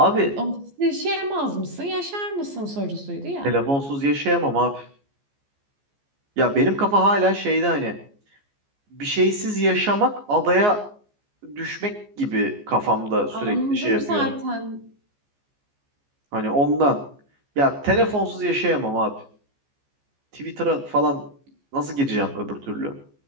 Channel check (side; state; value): left; late; 14 ms